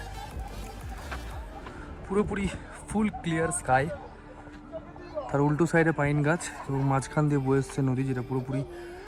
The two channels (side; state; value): both; identical; correlation 1.00